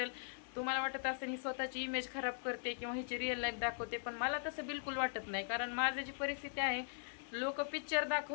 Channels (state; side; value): silent; right; 51 dB below the other